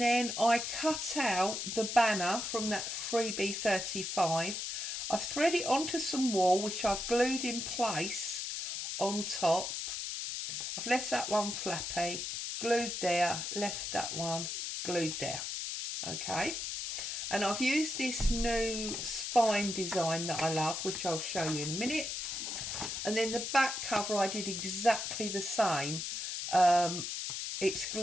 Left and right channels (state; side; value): noise; left; hiss, 4 dB below the sound